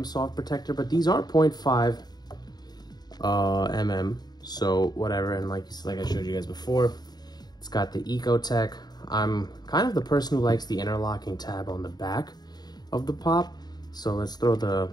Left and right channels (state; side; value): late; right; 0.20 ms